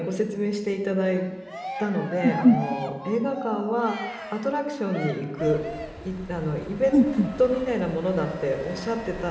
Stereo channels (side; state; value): both; identical; correlation 1.00